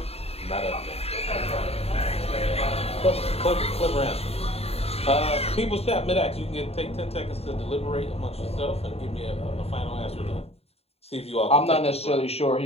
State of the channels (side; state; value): right; late; 0.29 ms